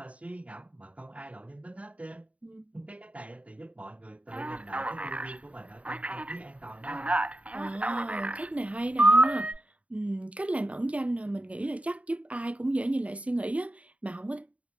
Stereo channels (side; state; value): left; late; 0.066 ms